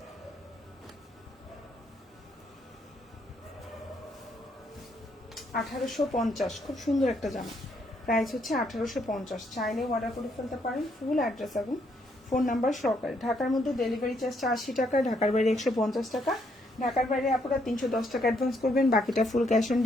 1850, খুব সুন্দর একটা জামা। প্রাইস হচ্ছে 1850। চাইলে অর্ডার করে ফেলতে পারেন। ফুল অ্যাড্রেস এবং ফোন নাম্বার সহকারে। ঢাকার মধ্যে ডেলিভারি চার্জটা 80 টাকা, ঢাকার বাইরে 150 টাকা। ঢাকার বাইরে আপনারা 310 টাকা অ্যাডভান্স করবেন, বাকিটা ফুল ক্যাশ অন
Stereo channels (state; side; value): normal; both; correlation 0.72